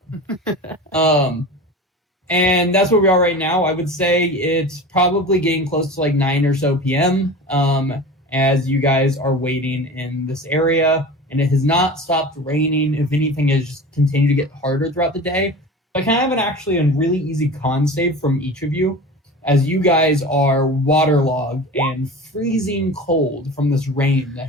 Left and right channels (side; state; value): both; normal; correlation 0.34